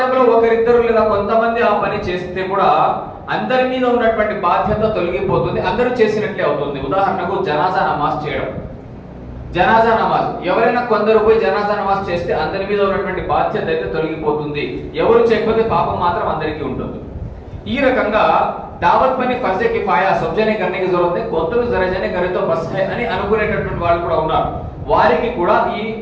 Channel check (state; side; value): identical; both; correlation 1.00